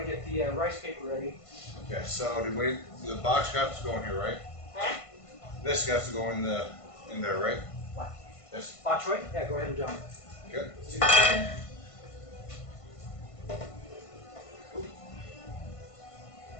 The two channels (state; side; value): late; right; 1.5 ms